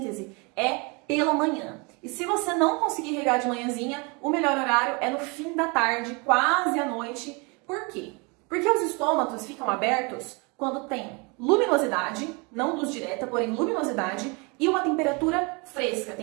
é pela manhã. E se você não conseguir regar de manhãzinha, o melhor horário é no fim da tarde, quase à noite. Por quê? Porque os estômatos ficam abertos quando tem luminosidade, não luz direta, porém luminosidade, e uma temperatura fresca.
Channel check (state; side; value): quieter; left; 30.1 dB